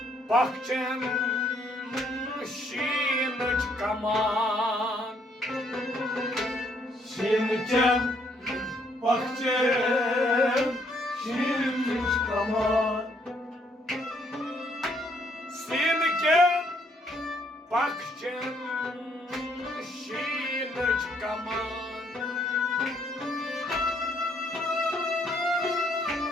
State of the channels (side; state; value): both; normal; correlation 0.69